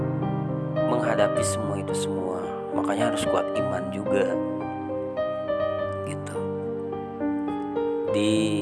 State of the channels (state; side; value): identical; both; correlation 1.00